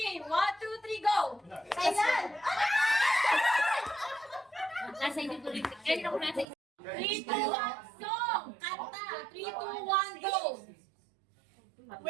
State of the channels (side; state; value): left; drops out; at 6.5 s